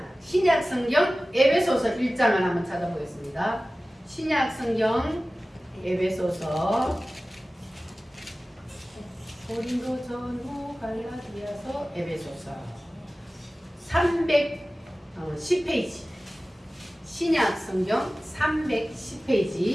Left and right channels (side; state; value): both; normal; correlation 0.96